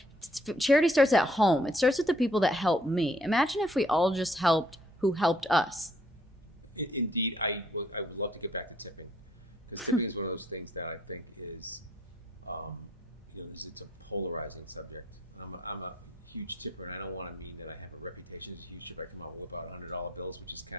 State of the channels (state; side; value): normal; both; correlation 0.65